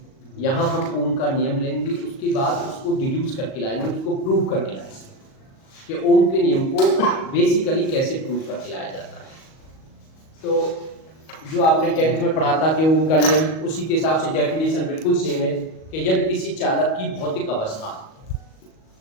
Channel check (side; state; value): right; late; 38 ms